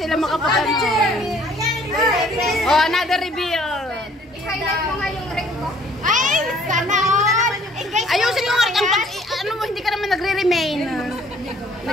makapagano. Oh, another reveal. I-highlight mo nga yung ring mo. Ay, sana all. Ayusin mo nga ano mo, hindi ka naman nagre-remain.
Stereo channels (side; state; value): both; normal; correlation 0.58